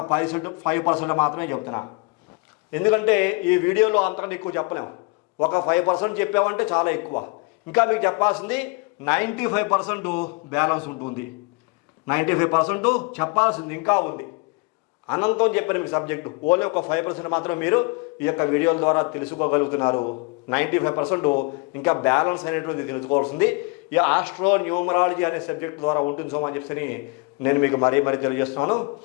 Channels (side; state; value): right; quieter; 28.9 dB